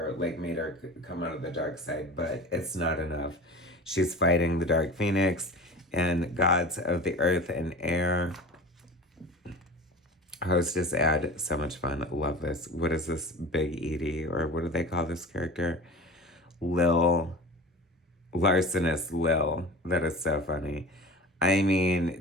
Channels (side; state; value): both; normal; correlation 0.35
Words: like, made her come out of the dark side, but it's not enough. She's fighting the Dark Phoenix and gods of the earth and air. Hostess ad, so much fun. Love this. What is this? Big Edie, or what do they call this character? Lil. Larcenous Lil. That is so funny. I